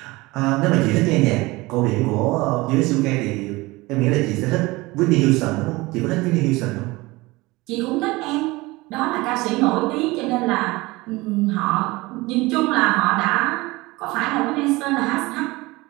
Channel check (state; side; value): quieter; left; 21.7 dB